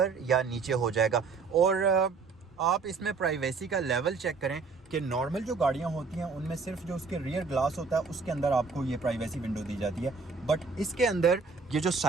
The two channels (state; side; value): quieter; left; 4.7 dB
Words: या नीचे हो जाएगा। और आप इसमें प्राइवेसी का लेवल चेक करें कि नॉर्मल जो गाड़ियां होती हैं उनमें सिर्फ जो उसके रियर ग्लास होता है उसके अंदर आपको ये प्राइवेसी विंडो दी जाती है। बट इसके अंदर ये जो